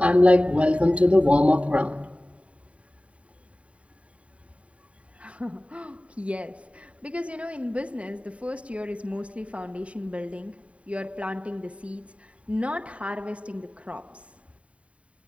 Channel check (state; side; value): late; left; 0.064 ms